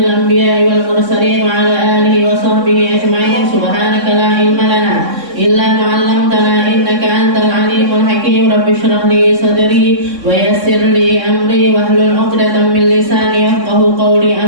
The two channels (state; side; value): late; left; 3.6 ms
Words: anbiya'i wal mursalin wa ala alihi wa sahbihi ajma'in. Subhanaka la ilma lana illa ma 'allamtana innaka antal alimul hakim. Rabbi shrah li sadri wa yassir li amri wahlul 'uqdatam min lisani yafqahu qawli.